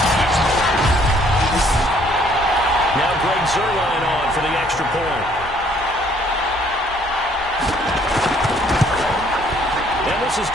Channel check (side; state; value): both; normal; correlation 0.62